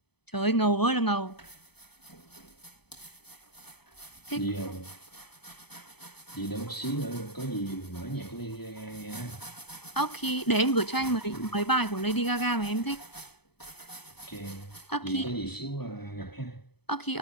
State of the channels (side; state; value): right; late; 0.98 ms